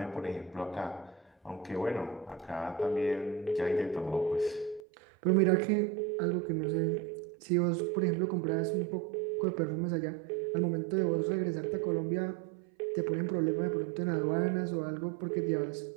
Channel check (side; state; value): left; drops out; at 4.8 s